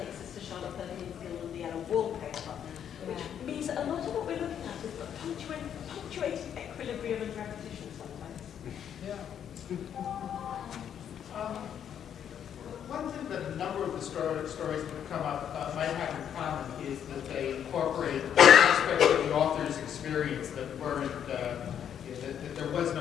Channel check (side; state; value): right; quieter; 9.0 dB